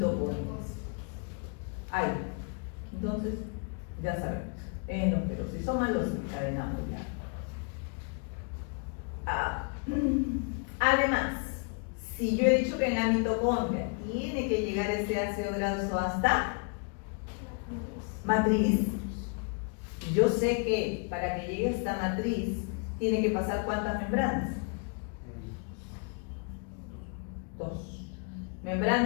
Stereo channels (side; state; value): right; quieter; 39.1 dB